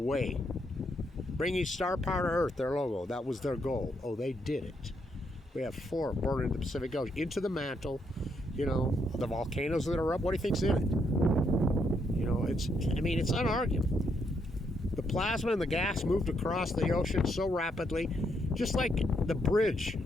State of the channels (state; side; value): normal; both; correlation 0.76